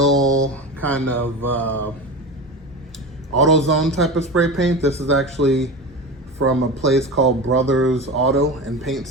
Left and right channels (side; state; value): both; normal; correlation 0.27